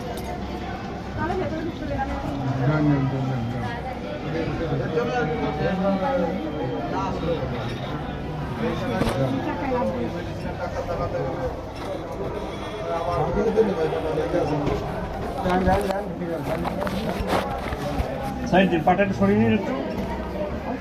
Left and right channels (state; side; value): identical; both; correlation 1.00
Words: তাহলে ভেতরে চলে যাবেন যান সাইড দিয়ে পাটাটা সরিয়ে নিন একটু